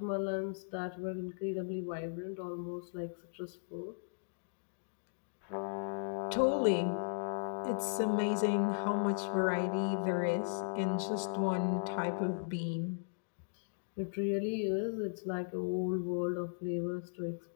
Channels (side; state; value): right; silent; digital silence